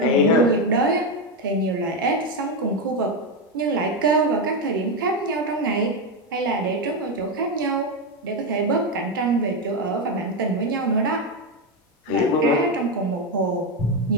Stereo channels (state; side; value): normal; both; correlation 0.09